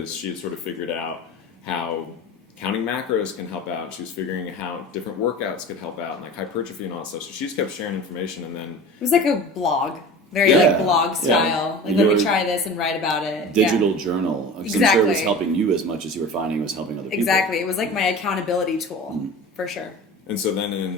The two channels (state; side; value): normal; both; correlation 0.36